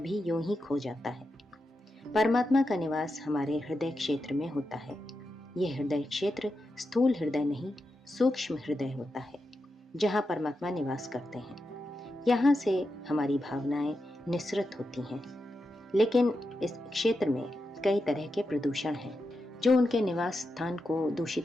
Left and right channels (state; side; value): normal; both; correlation 0.88